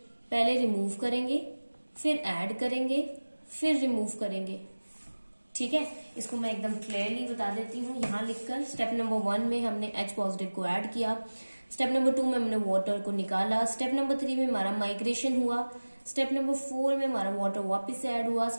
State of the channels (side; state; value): both; inverted; correlation -1.00